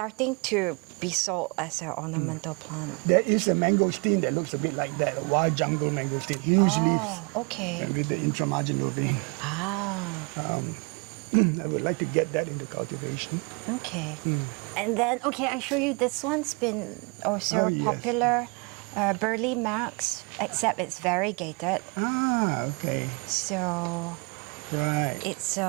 to be sold as an ornamental plant. There is a mangosteen that looks a bit like that, a wild jungle mangosteen, huge leaves. Okay. And with the intramarginal vein. I would like to get that into cultivation. Okay. And then, I show you this one's been also yes. popular. Burley Max, except it's variegated. Okay. So Right. it's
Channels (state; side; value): quieter; left; 32.0 dB